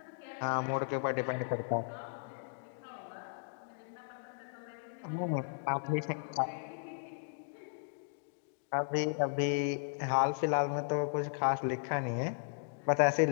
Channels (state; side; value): silent; right; digital silence